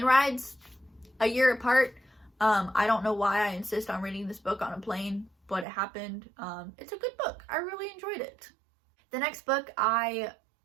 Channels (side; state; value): left; drops out; at 5.7 s